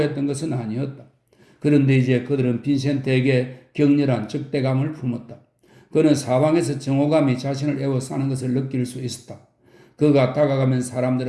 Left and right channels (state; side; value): identical; both; correlation 1.00